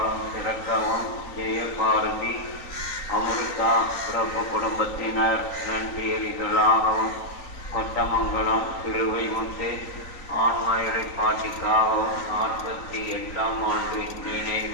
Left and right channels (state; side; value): late; right; 3.9 ms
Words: சிறக்கவும், ஜெயபாரதி அமிர்தா பிறப்பு குடும்பத்தினர் நன்றியறிதலாகவும், கொட்டமங்கலம் சிறுவை முத்து ஆன்மா இலைப்பாட்டிக்காகவும், 48ஆம் ஆண்டு